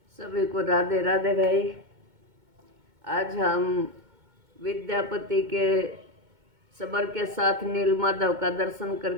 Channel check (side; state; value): left; late; 2.2 ms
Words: सभी को राधे राधे भाई। आज हम विद्यापति के सबर के साथ नीलमाधव का दर्शन